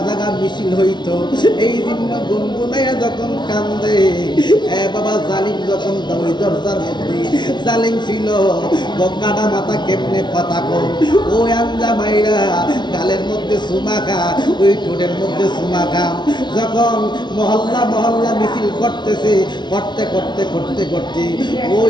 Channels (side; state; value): right; late; 0.21 ms